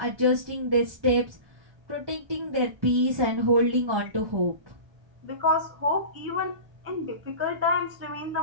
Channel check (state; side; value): late; left; 1.3 ms